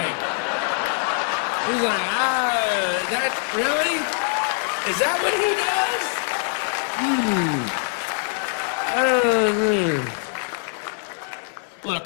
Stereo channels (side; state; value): right; silent; 63 dB below the other